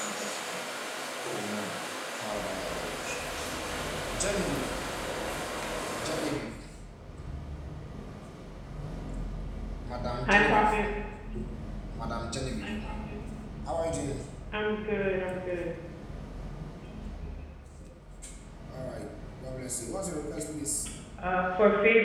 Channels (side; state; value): both; identical; correlation 1.00